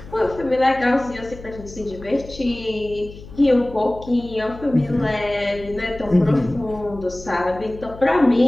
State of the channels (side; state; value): left; noise; hum, 16 dB below the sound